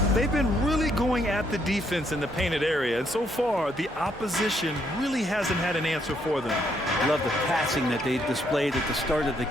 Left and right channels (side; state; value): both; normal; correlation 0.72